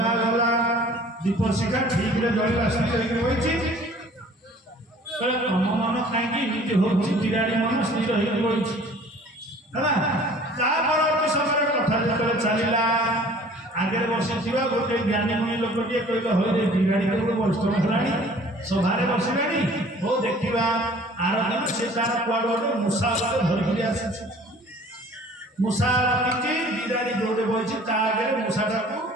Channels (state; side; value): normal; both; correlation 0.50